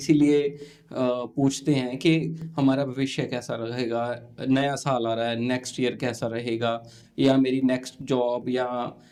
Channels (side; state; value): both; identical; correlation 1.00